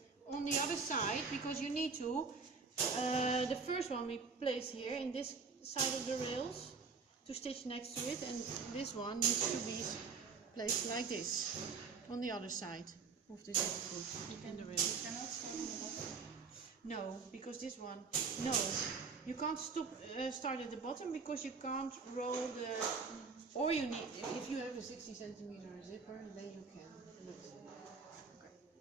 on the other side because you need to. The first one we place here in this side of the rails to stitch next to it, and this one needs to be placed like this on the other side of the zipper foot in the rail. You cannot start on the bottom? No, because this one, no. You can't start at the bottom because you can't roll the. Or you need, if you have a 60 centimeter zipper, then you can. But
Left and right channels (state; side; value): quieter; left; 4.9 dB